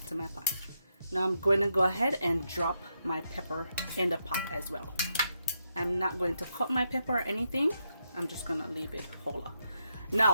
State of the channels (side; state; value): both; inverted; correlation -0.82